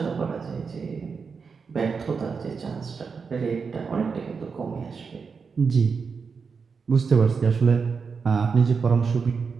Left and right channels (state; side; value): quieter; left; 5.4 dB